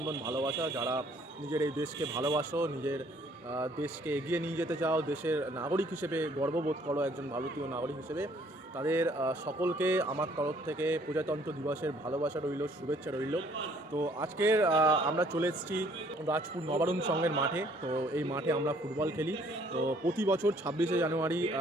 ভালোবাসা। যারা নিজের এই দেশকে ভালোবাসো, নিজের দেশকে এগিয়ে নিয়ে যেতে চাও, দেশের নাগরিক হিসেবে গর্ববোধ করো একজন ভারতীয় নাগরিক হিসেবে, তাদের সকলকে আমার তরফ থেকে প্রজাতন্ত্র দিবসের ভালোবাসা রইল, শুভেচ্ছা রইল। তো আজকের আমরা চলে এসেছি রাজপুর নবারুণ সংঘের মাঠে। তো এই মাঠে আমরা ফুটবল খেলি। তো প্রতি বছর 26শে জানুয়ারি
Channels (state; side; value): normal; both; correlation 0.61